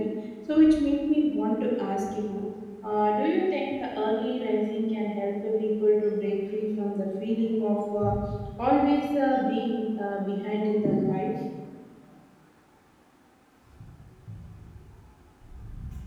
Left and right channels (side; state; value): both; identical; correlation 1.00